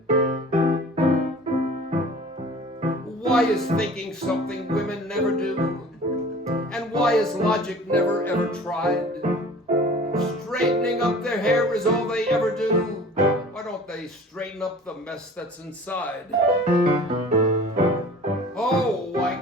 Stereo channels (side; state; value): both; normal; correlation 0.44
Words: Why is thinking something women never do? And why is logic never ever tried? Straightening up their hair is all they ever do. Why don't they they straighten up the mess that's inside. Oh,